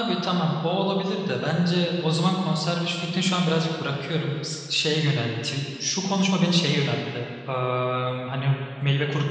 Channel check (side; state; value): both; identical; correlation 1.00